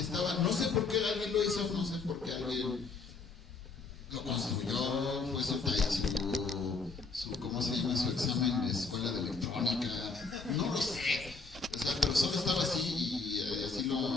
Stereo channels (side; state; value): right; quieter; 4.2 dB